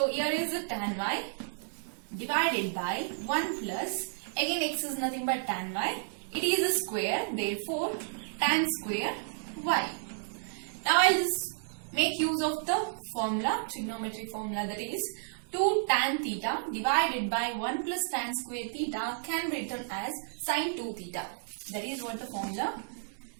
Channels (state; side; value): silent; left; digital silence